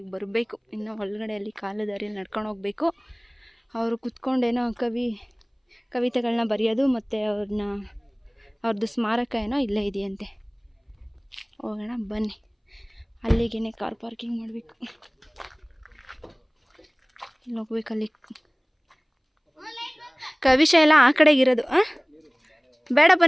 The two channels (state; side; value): identical; both; correlation 1.00